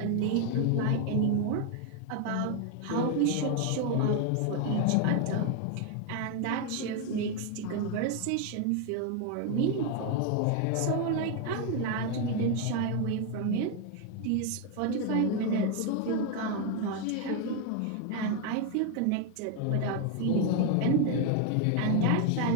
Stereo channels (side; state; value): both; different; correlation 0.01